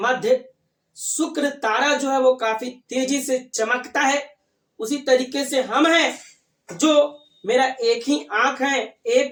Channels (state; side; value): identical; both; correlation 1.00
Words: शुक्र तारा जो है वो काफी तेजी से चमकता है, उसी तरीके से हम हैं जो मेरा एक ही आंख है,